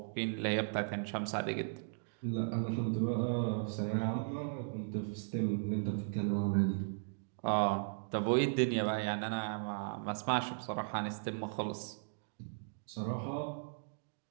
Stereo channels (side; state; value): left; silent; digital silence